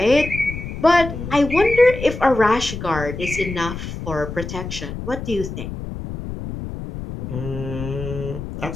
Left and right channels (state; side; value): noise; left; rumble, 8 dB below the sound